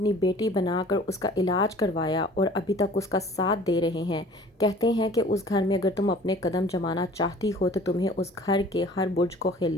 بیٹی بنا کر اس کا علاج کروایا اور ابھی تک اس کا ساتھ دے رہے ہیں، کہتے ہیں کہ اس گھر میں اگر تم اپنے قدم جمانا چاہتی ہو تو تمہیں اس گھر کے ہر برج کو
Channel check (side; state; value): both; normal; correlation 0.49